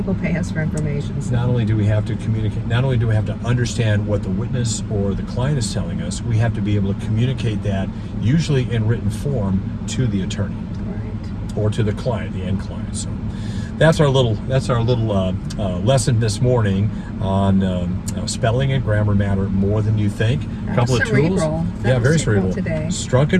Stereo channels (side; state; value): both; identical; correlation 1.00